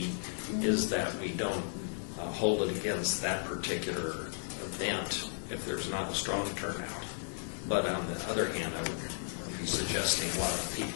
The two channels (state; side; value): silent; right; 55 dB below the other